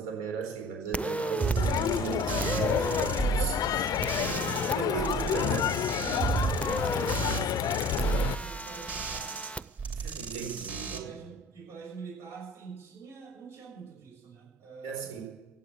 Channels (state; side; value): normal; both; correlation 0.44